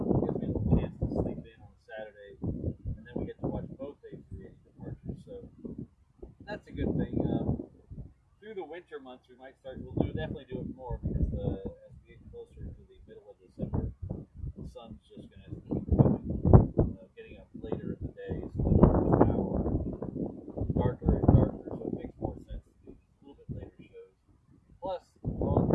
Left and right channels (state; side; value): identical; both; correlation 1.00